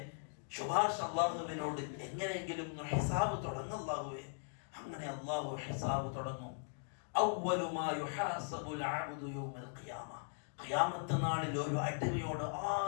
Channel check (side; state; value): right; silent; digital silence